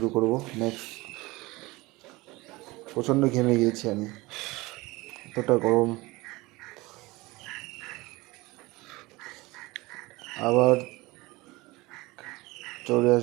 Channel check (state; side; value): quieter; left; 21.7 dB